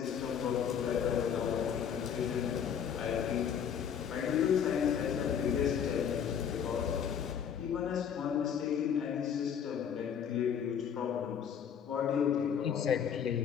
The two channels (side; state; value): right; quieter; 8.1 dB